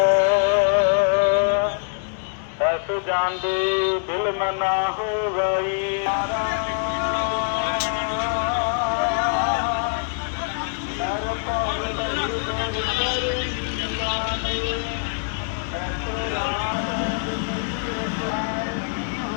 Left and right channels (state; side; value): silent; right; digital silence